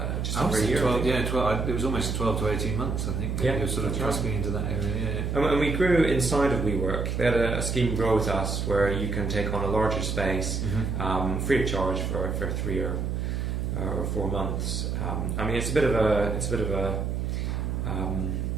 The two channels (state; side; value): noise; right; hum, 1 dB below the sound